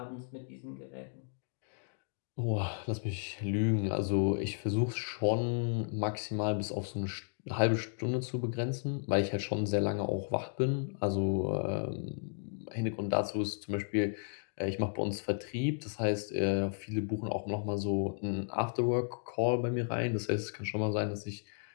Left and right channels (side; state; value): right; silent; digital silence